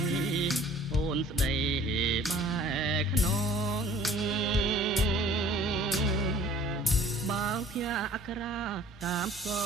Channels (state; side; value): normal; both; correlation 0.51